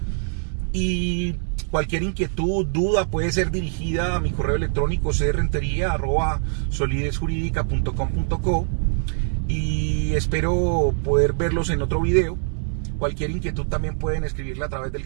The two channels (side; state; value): left; silent; digital silence